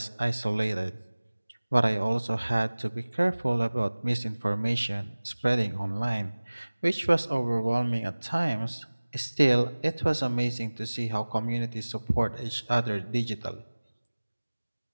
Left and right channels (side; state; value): both; inverted; correlation -1.00